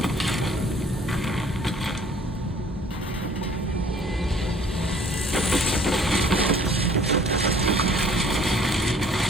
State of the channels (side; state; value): both; normal; correlation 0.55